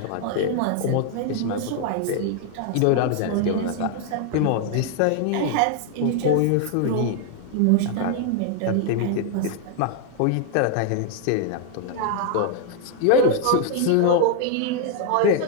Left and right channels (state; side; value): different; both; correlation 0.00